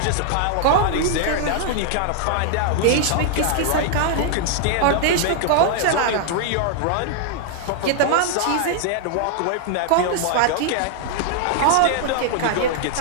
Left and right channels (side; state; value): both; different; correlation 0.00